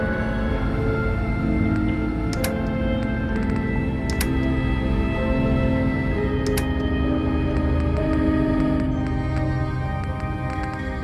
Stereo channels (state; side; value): identical; both; correlation 1.00